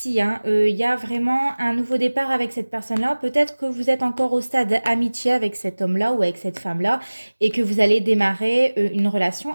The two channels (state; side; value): inverted; both; correlation -1.00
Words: hein, il y a vraiment un nouveau départ avec cette personne-là. Peut-être que vous êtes encore au stade amitié avec cet homme-là ou avec cette femme-là et que vous allez démarrer une